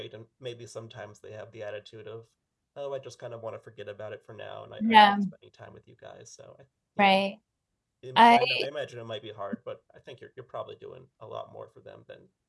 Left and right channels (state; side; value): identical; both; correlation 1.00